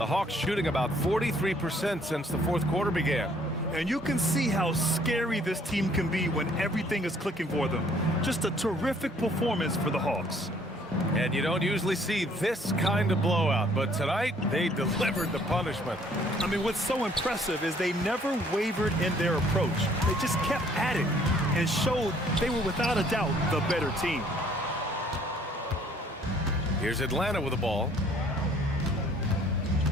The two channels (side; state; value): both; normal; correlation 0.61